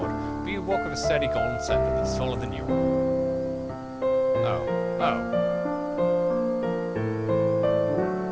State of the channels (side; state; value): both; identical; correlation 1.00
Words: but you walk with a sturdy golden scepter that's taller than you. Oh.